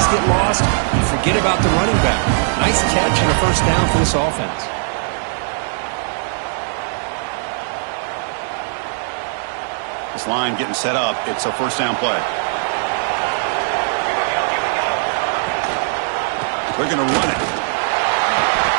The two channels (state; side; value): silent; left; digital silence